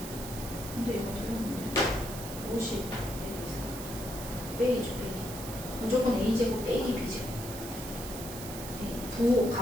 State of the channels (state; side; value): noise; right; hiss, 10 dB below the sound